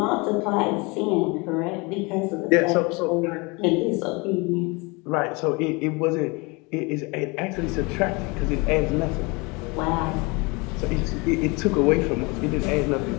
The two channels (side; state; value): right; quieter; 27.3 dB